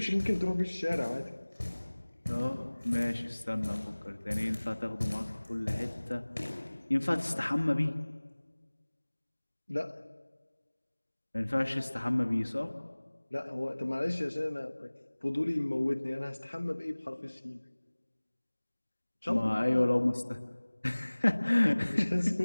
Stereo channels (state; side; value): inverted; both; correlation -1.00